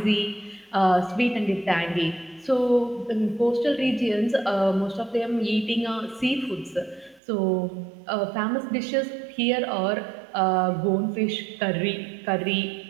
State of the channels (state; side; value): drops out; left; at 7.2 s